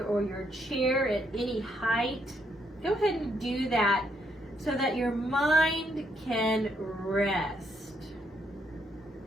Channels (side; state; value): both; normal; correlation 0.74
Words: or your chair at any height, go ahead and do that so that your mind can rest.